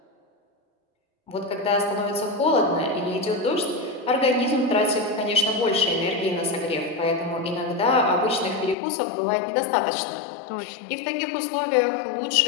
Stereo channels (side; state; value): right; drops out; at 8.8 s